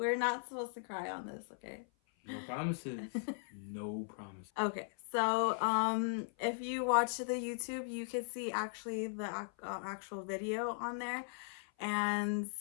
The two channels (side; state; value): right; silent; 52 dB below the other